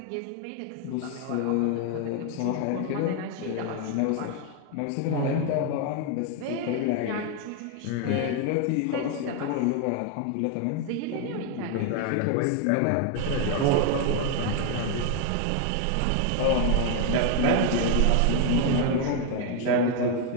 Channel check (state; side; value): different; both; correlation 0.01